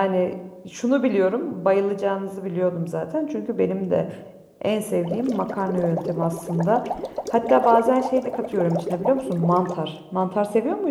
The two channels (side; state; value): both; identical; correlation 1.00